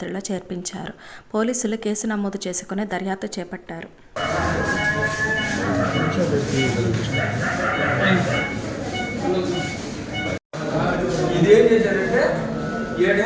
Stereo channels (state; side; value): identical; both; correlation 1.00